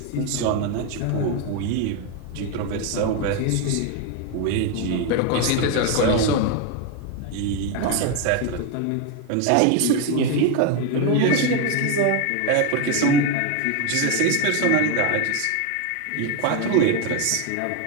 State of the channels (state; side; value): different; both; correlation 0.02